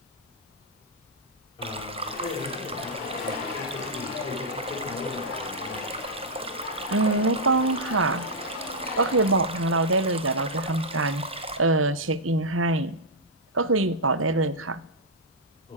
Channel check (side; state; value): both; normal; correlation -0.08